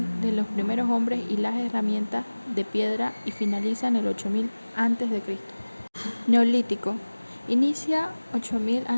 de los primeros hombres y las herramientas de piedra y finaliza en el 8000 antes de Cristo. Neolítico. Inicia 8000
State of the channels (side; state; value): both; inverted; correlation -1.00